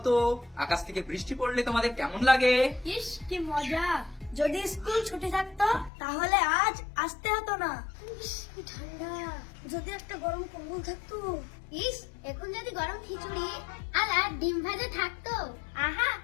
তো আকাশ থেকে বৃষ্টি পড়লে তোমাদের কেমন লাগে? ইস কি মজা! যদি স্কুল ছুটি থাকতো তাহলে আজ আসতে হতো না। ইস কি ঠান্ডা! যদি একটা গরম কম্বল থাকতো। ইস এখন যদি গরম খিচুড়ি আর ডিম ভাজা থাকতো, আহা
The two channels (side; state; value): right; drops out; at 5.9 s